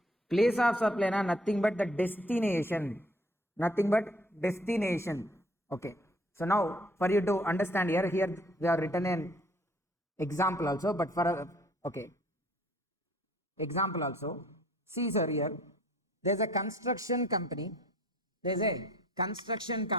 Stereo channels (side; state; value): both; normal; correlation 0.58